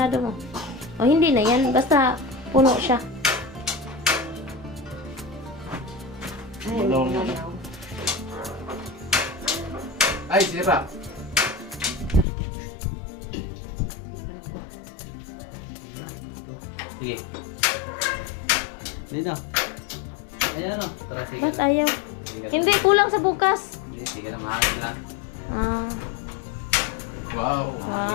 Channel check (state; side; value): drops out; right; at 12.2 s